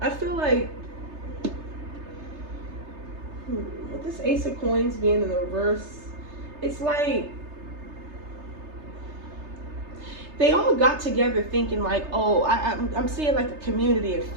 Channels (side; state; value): left; late; 3.3 ms